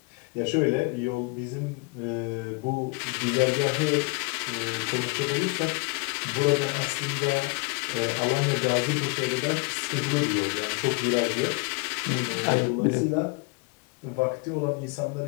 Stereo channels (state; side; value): quieter; right; 29.2 dB